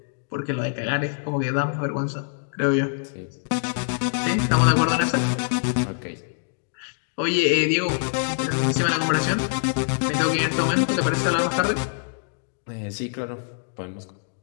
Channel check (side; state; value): right; silent; digital silence